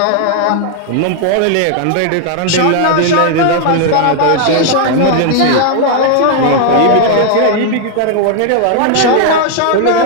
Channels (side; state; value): both; different; correlation 0.00